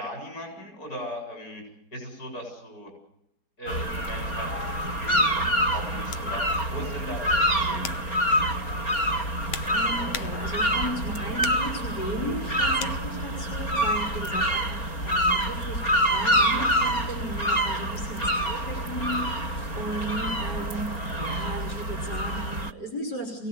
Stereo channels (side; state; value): right; late; 4.3 ms